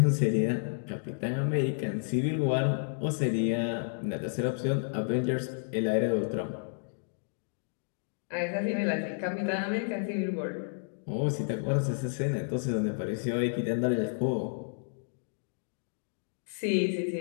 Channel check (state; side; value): silent; right; digital silence